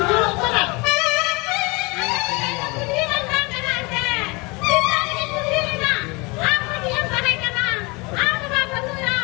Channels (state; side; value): quieter; right; 27.0 dB